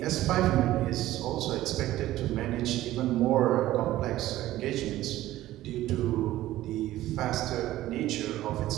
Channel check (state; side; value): quieter; left; 15.1 dB